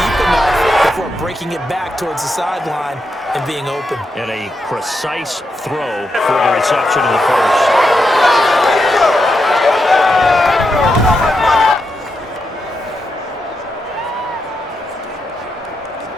enough before breaking it back towards the sideline and being open. And a precise throw for the reception of the first.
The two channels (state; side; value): normal; both; correlation 0.84